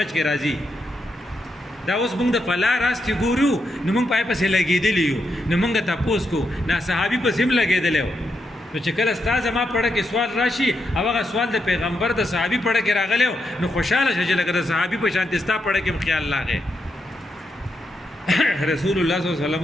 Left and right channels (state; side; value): normal; both; correlation 0.83